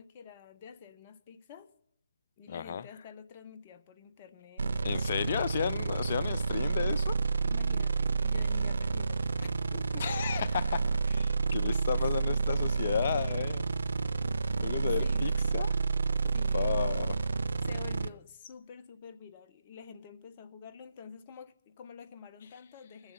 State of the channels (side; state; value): both; inverted; correlation -0.84